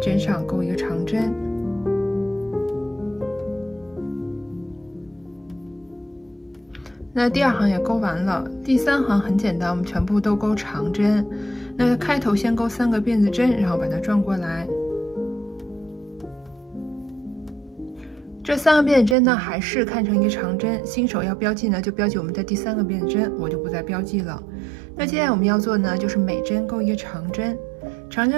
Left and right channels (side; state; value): left; drops out; at 19.2 s